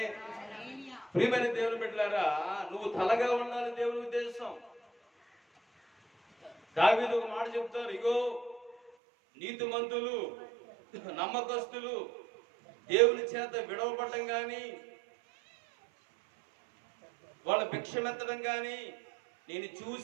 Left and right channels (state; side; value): drops out; left; at 8.9 s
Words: ప్రియమైన దేవుని బిడ్డలారా, నువ్వు తలగా ఉండాలి దేవుని ఉద్దేశం. దావీదు ఒక మాట చెప్తారు, ఇగో నీతిమంతులు నమ్మకస్తులు దేవుని చేత విడవబడటం కానీ వాళ్ళ భిక్షమెత్తడం కానీ నేను